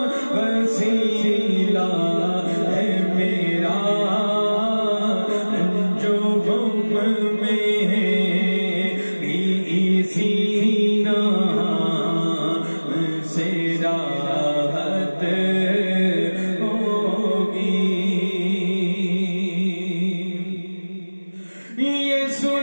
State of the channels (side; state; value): both; inverted; correlation -1.00